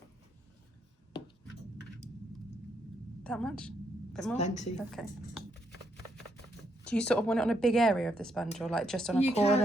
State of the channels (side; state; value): both; normal; correlation 0.77